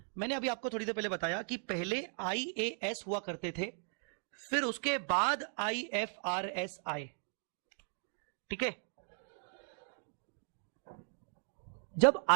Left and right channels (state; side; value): silent; left; 53 dB below the other